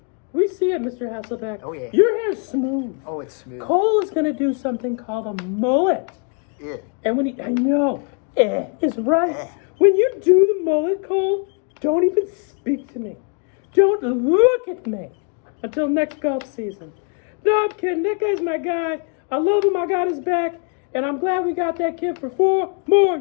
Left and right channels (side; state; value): right; quieter; 37.3 dB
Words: We see it, Mr. Hasselbeck. Oh, yeah. Your hair's smooth. Oh, it's smooth. Cole is going to do something called a mullet. Yeah. And I know, is right. When you do the mullet, Cole, don't even speak to me. Don't look at me until next golf season. No, I'm kidding. That guy's my guy. I love him. I got his back. And I'm glad we got that kid for 4 more